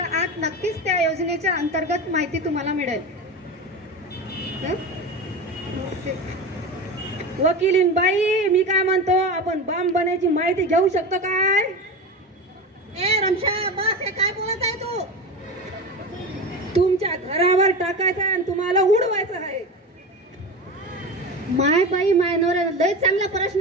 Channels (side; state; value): both; normal; correlation 0.26